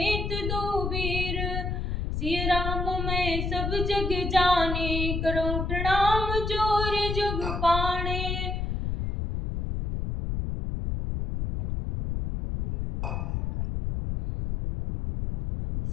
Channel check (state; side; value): noise; left; rumble, 2 dB below the sound